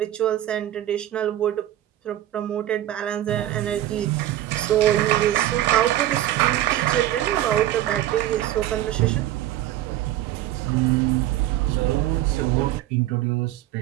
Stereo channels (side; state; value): left; quieter; 13.4 dB